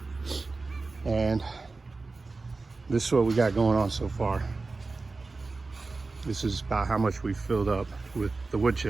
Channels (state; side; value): quieter; left; 3.8 dB